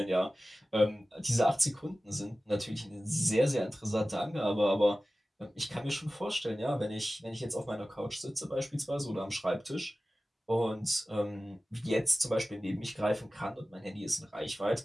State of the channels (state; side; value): normal; both; correlation 0.96